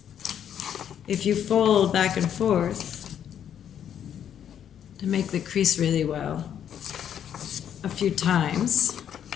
If you fold back and forth to make the crease really well a few times,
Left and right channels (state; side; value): quieter; right; 9.3 dB